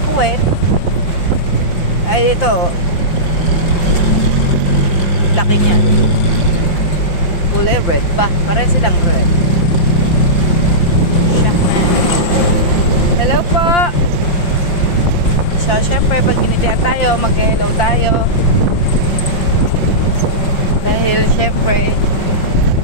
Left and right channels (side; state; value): right; late; 5.6 ms